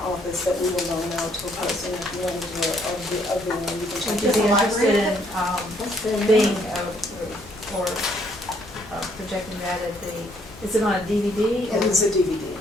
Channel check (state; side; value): normal; both; correlation 0.68